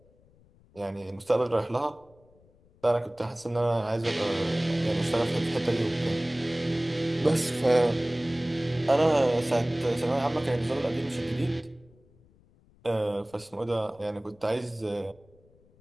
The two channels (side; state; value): left; noise; rumble, 30 dB below the sound